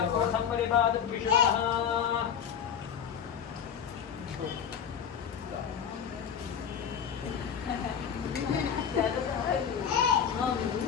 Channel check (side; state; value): right; quieter; 7.9 dB